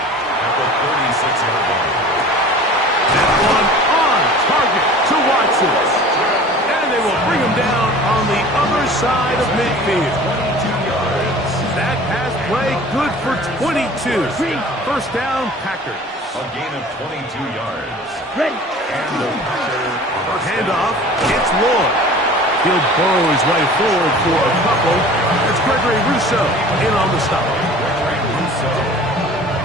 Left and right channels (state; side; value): normal; both; correlation 0.43